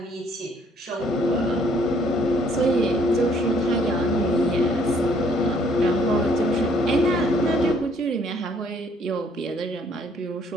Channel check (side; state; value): both; normal; correlation 0.64